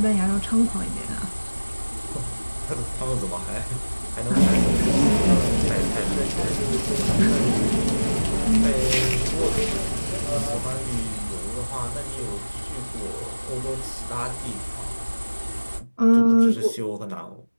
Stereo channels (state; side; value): inverted; both; correlation -1.00